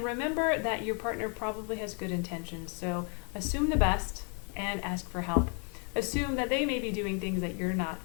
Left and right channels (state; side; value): quieter; right; 39.0 dB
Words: remember that your partner probably has good intentions, so assume the best and ask for help. Assume that they may be doing things that you're not